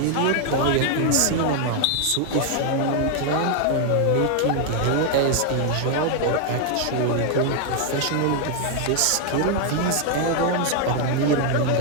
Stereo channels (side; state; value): both; different; correlation 0.00